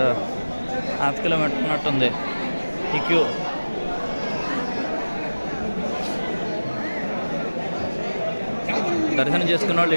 1/2 కిలోమీటర్ ఉన్నట్టుంది ఈ క్యూ. దర్శనం చేసుకున్న వాళ్ళు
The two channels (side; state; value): both; inverted; correlation -1.00